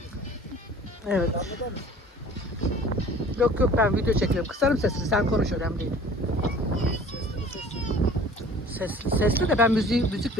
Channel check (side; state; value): both; normal; correlation 0.47